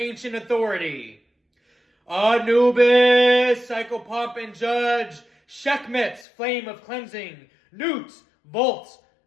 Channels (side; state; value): right; drops out; at 6.2 s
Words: authority. Anubis, psychopomp and judge, Sekhmet, flame of cleansing, Newt, vault